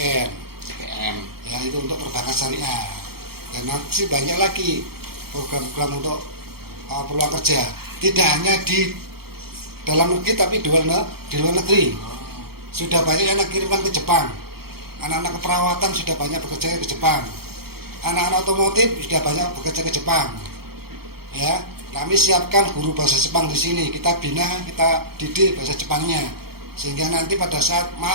Ya, itu untuk perbankan syariah. Dan nanti banyak lagi program-program untuk peluang kerja. Tidak hanya di dalam negeri tapi di luar negeri. Sudah banyak yang kirimkan ke Jepang. Anak-anak keperawatan sudah banyak bekerja ke Jepang. Anak-anak otomotif sudah banyak bekerja ke Jepang. Ya, kami siapkan guru bahasa Jepang di sini. Kita bina, kita didik bahasa Jepangnya, sehingga nanti pada saat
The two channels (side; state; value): left; late; 0.95 ms